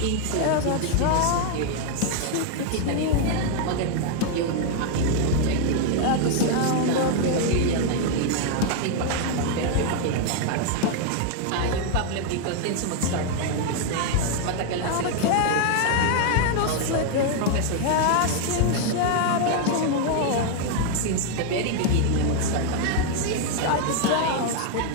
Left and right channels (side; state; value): both; different; correlation 0.00